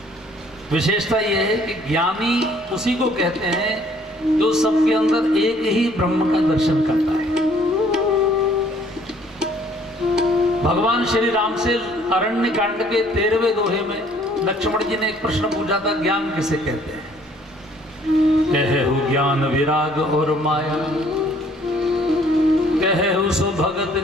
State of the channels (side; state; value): both; normal; correlation 0.60